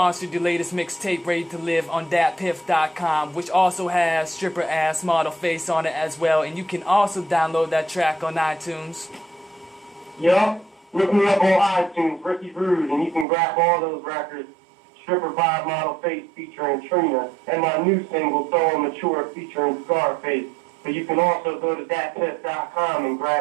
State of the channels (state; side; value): drops out; left; at 13.2 s